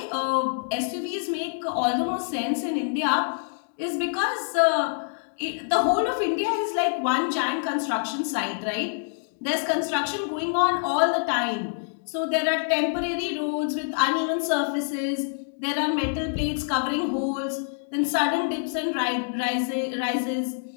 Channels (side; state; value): right; silent; digital silence